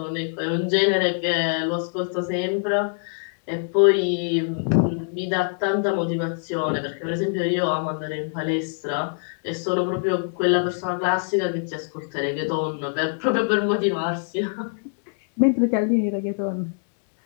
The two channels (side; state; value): right; silent; digital silence